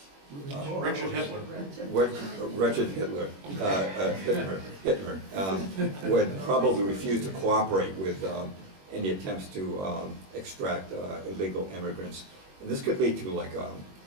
Richard Hitler. Wretched Hitler, Hitler would probably refuse to cooperate with any attempts to extract illegal immigrants. And this could lead to like a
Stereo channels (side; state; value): left; late; 21 ms